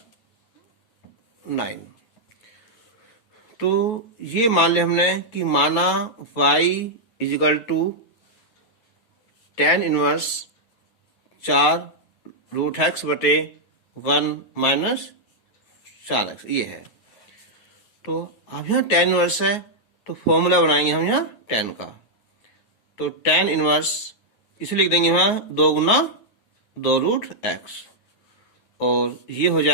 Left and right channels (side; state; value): right; late; 9.4 ms